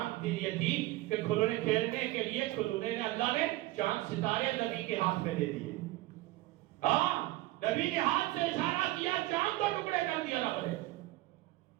یہ تھی کہ کھلونے کھیلنے کے لیے کھلونے نے اللہ نے چاند ستارے نبی کے ہاتھ میں دے دیے۔ ہاں نبی نے ہاتھ سے اشارہ کیا، چاند کو ٹکڑے کر دیا رب نے۔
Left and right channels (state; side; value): quieter; left; 18.2 dB